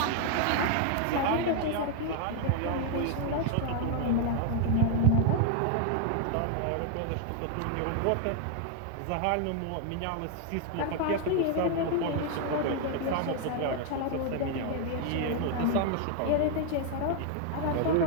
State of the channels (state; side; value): different; both; correlation 0.00